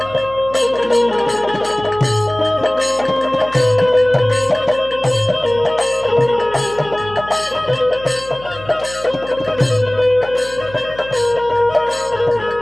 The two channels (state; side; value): noise; left; hum, 18 dB below the sound